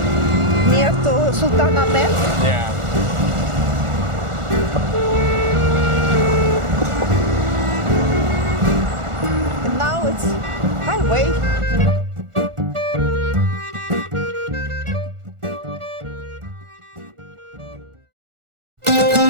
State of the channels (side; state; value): left; late; 1.4 ms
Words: near to Sultan Ahmet. Yeah. And now it's highway.